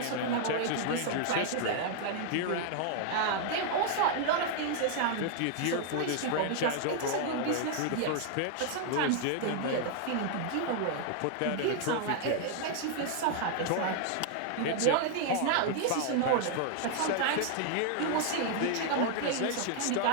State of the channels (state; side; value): different; both; correlation 0.00